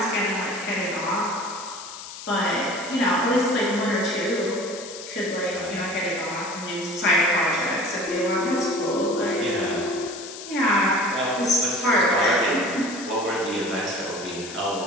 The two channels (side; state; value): left; noise; hiss, 12 dB below the sound